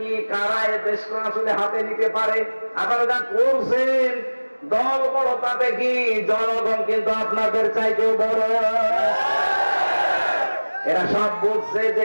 কারা এ দেশকে আসলে হাতে নিতে পারে, আপনারা যা করছেন দল বড়, তাতে কি জনগণ কিন্তু আপনাদের চাইতেও বড়। এরা সব বুঝছে যে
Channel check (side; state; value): both; inverted; correlation -1.00